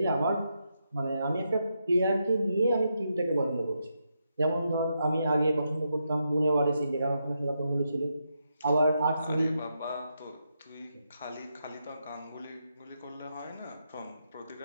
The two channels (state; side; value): inverted; both; correlation -0.83